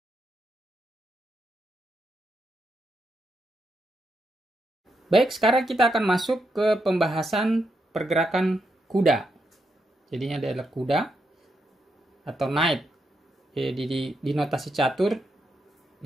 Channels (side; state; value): both; normal; correlation 0.82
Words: Baik, sekarang kita akan masuk ke pembahasan pergerakan kuda. Jadinya adalah kuda atau knight. Di notasi catur